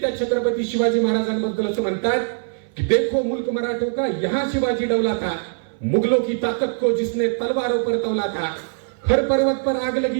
त्या छत्रपती शिवाजी महाराजांबद्दल असं म्हणतात कि देखो मुल्क मराठों का यहाँ शिवाजी डौला था, मुगलों की ताकत को जिसने तलवारों पर तौला था, हर पर्वत पर आग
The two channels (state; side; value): silent; left; 60 dB below the other